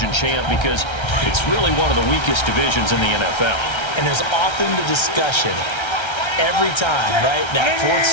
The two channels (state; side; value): late; right; 1.3 ms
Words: champ, because it's really one of the weakest divisions in the NFL. And there's often the discussion every time, right? That 4th